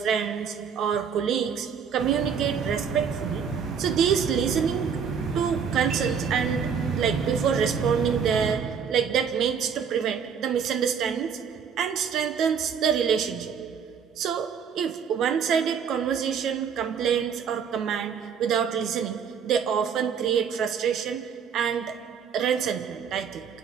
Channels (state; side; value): quieter; left; 7.0 dB